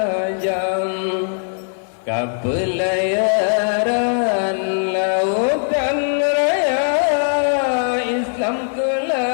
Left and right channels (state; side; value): silent; right; 66 dB below the other